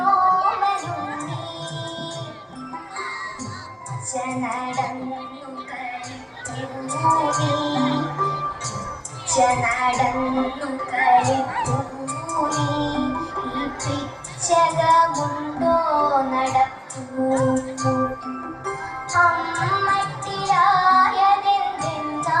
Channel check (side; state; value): both; identical; correlation 1.00